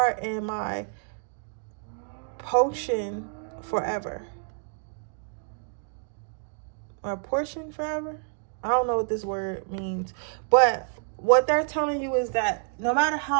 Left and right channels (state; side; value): silent; left; 56 dB below the other